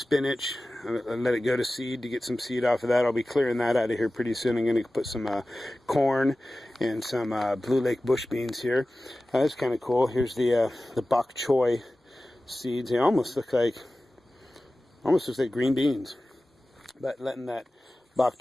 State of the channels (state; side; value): normal; both; correlation 0.96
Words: I'll let it go to seed to get some seed off of that. I'll be clearing that out of here pretty soon. I'm going to put some corn and some Blue Lake bush beans here. That's kind of cool. Here's the bok choy seeds. They almost look like green beans, but letting that bok